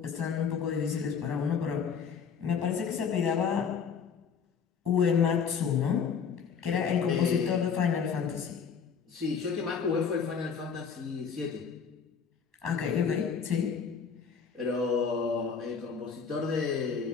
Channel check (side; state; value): right; quieter; 6.4 dB